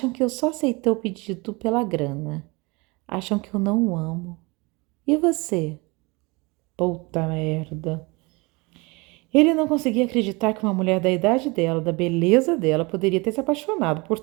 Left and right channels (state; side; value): quieter; left; 26.4 dB